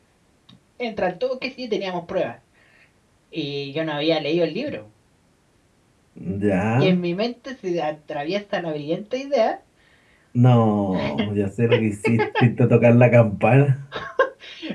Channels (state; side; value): identical; both; correlation 1.00